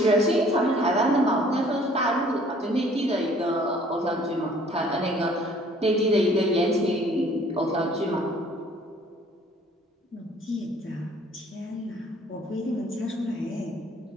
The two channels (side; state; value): both; normal; correlation 0.56